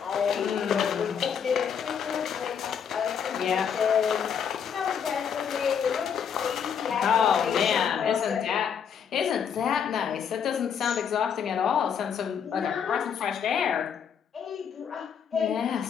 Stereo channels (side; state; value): right; quieter; 7.6 dB